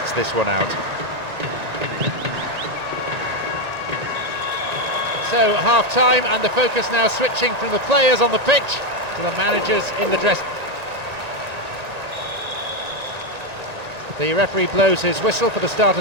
this one out. So half-time, and the focus now switching from the players on the pitch to the managers in the dress. The referee blows his whistle for the start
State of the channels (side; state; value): left; late; 1.9 ms